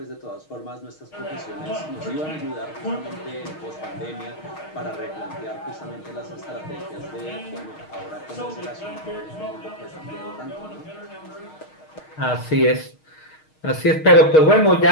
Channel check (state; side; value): late; right; 6.4 ms